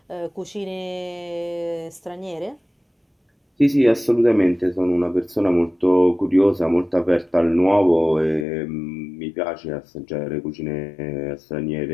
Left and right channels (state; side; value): drops out; right; at 8.5 s